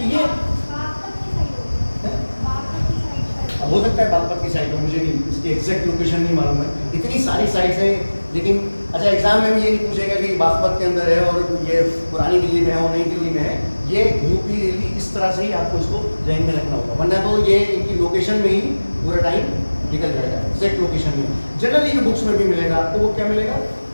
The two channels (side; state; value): both; inverted; correlation -1.00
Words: ये अब हो सकता है बागपत की साइड हो, मुझे नहीं इसकी एग्जैक्ट लोकेशन नहीं मालूम है, इतनी सारी साइट्स हैं। लेकिन अच्छा, एग्जाम में भी ये नहीं पूछेगा कि बागपत के अंदर है और ये पुरानी दिल्ली में है और नई दिल्ली में है। ये यूपी दिल्ली इस तरह से ही आपको इसको जहन में रखना होगा, वरना तो ये इनकी लोकेशन में ही पूरा टाइम निकल जाएगा, एग्जैक्ट लोकेशन में। जनरली जो बुक्स में भी मिलेगा आपको वो क्या मिलेगा,